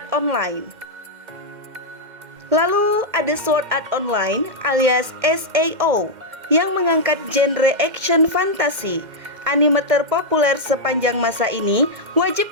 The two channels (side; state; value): left; late; 2.1 ms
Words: Online. Lalu ada Sword Art Online alias SAO yang mengangkat genre action fantasi. Anime terpopuler sepanjang masa ini wajib